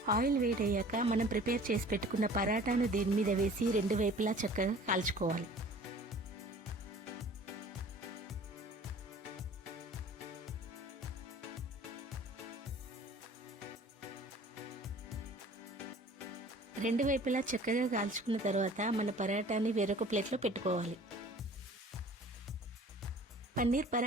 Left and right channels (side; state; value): both; normal; correlation 0.47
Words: ఆయిల్ వేడయ్యాక మనం ప్రిపేర్ చేసి పెట్టుకున్న పరాటాను దీని మీద వేసి రెండు వైపులా చక్కగా కాల్చుకోవాలి. రెండు వైపులా చక్కగా కాల్చుకున్న తర్వాత మన పరాటాని వేరొక ప్లేట్లో పెట్టుకోవాలి. పన్నీర్